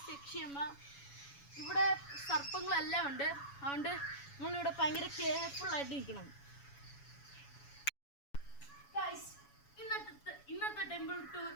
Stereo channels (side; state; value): right; late; 7.1 ms